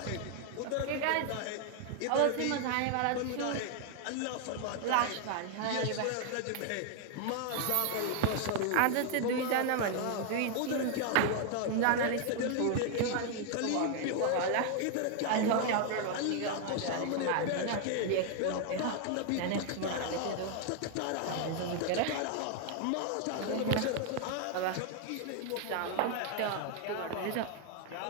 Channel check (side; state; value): both; different; correlation 0.00